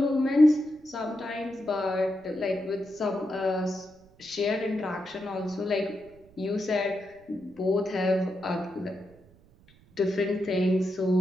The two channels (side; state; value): right; noise; rumble, 28 dB below the sound